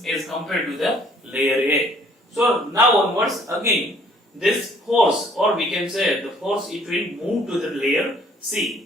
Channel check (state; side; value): normal; both; correlation 0.59